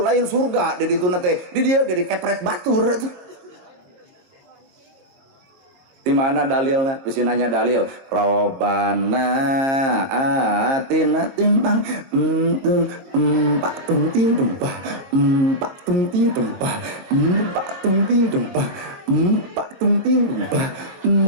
lain surga di ditu teh. Di dieu ge dikepret batur atuh. Di mana dalilnya? Bisa nanya dalil. Robana atina timbang empat tunting tumpah empat tunting tumpah empat tunting tumpah empat tunting tumpah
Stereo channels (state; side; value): late; left; 22 ms